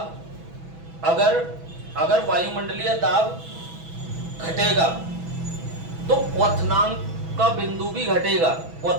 अगर वायुमंडलीय दाब घटेगा तो क्वथनांक का बिंदु भी घटेगा,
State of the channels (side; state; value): left; late; 6.1 ms